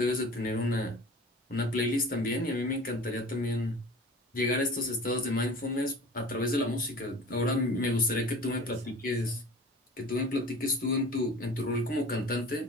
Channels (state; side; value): normal; both; correlation 0.40